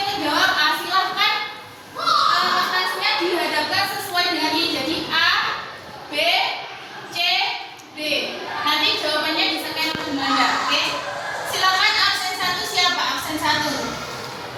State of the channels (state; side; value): identical; both; correlation 1.00